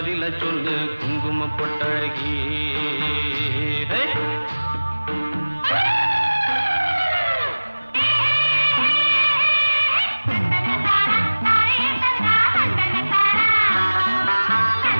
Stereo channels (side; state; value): both; inverted; correlation -1.00